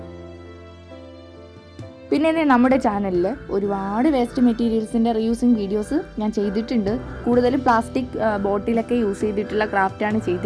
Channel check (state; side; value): identical; both; correlation 1.00